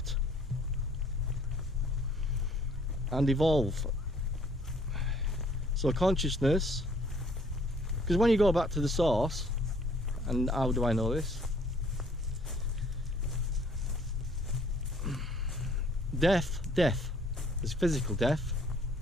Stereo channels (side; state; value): both; normal; correlation 0.60